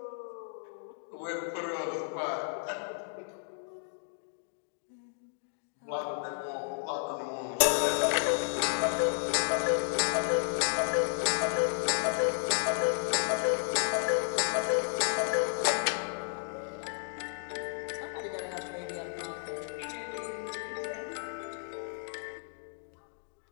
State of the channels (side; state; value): right; silent; digital silence